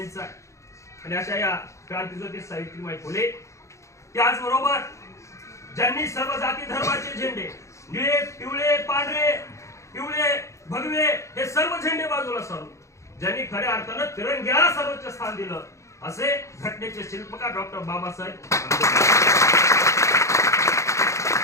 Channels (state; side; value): late; right; 0.14 ms